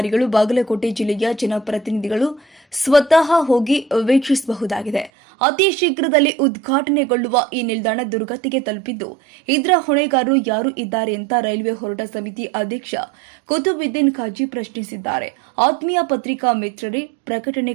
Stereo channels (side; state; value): left; drops out; at 5.1 s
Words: ಬಾಗಲಕೋಟೆ ಜಿಲ್ಲೆಯ ಜನಪ್ರತಿನಿಧಿಗಳು ಸ್ವತಃ ಹೋಗಿ ವೀಕ್ಷಿಸಬಹುದಾಗಿದೆ. ಅತಿ ಶೀಘ್ರದಲ್ಲಿ ಉದ್ಘಾಟನೆಗೊಳ್ಳುವ ಈ ನಿಲ್ದಾಣ ದುರ್ಗತಿಗೆ ತಲುಪಿದ್ದು, ಇದರ ಹೊಣೆಗಾರರು ಯಾರು ಇದ್ದಾರೆ ಅಂತ ರೈಲ್ವೆ ಹೋರಾಟ ಸಮಿತಿ ಅಧ್ಯಕ್ಷ ಕುತುಬುದ್ದೀನ್ ಖಾಜಿ ಪ್ರಶ್ನಿಸಿದ್ದಾರೆ. ಆತ್ಮೀಯ ಪತ್ರಿಕಾ ಮಿತ್ರರೇ, ಪ್ರಕಟಣೆ